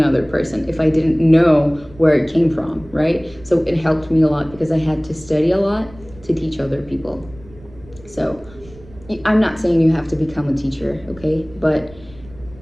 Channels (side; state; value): right; noise; rumble, 22 dB below the sound